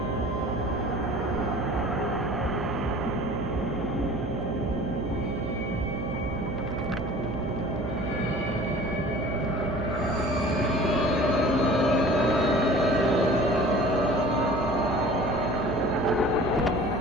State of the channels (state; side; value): noise; right; hum, 5 dB below the sound